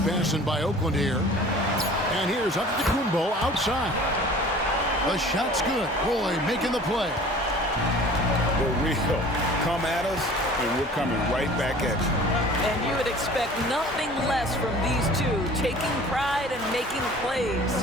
by Oakland here. And here's Antetokounmpo outside. The shot's good. Roy making the play. For real. Come at us, and we're coming right back at you. And you would expect nothing less from these two, taking pride and making plays.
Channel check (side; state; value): both; normal; correlation 0.45